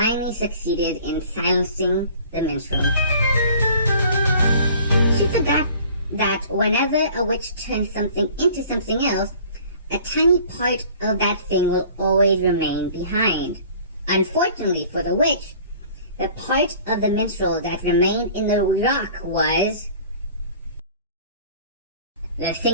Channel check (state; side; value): inverted; both; correlation -0.49